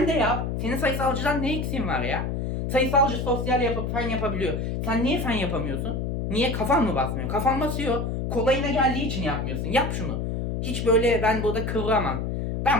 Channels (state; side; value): noise; left; hum, 2 dB below the sound